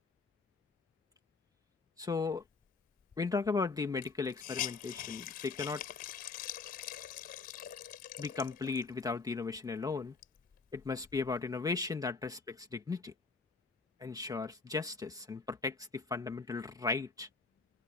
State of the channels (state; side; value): quieter; right; 4.3 dB